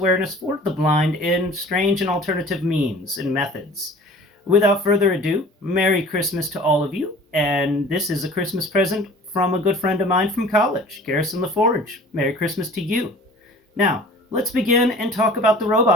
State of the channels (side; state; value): both; normal; correlation 0.46